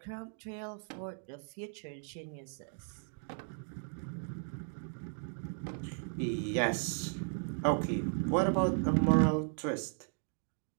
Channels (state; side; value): silent; left; 54 dB below the other